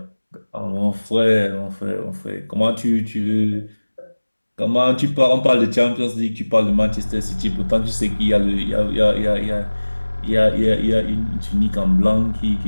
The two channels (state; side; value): inverted; both; correlation -1.00